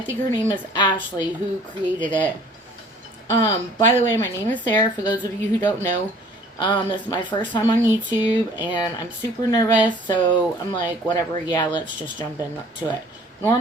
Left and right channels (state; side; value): normal; both; correlation 0.53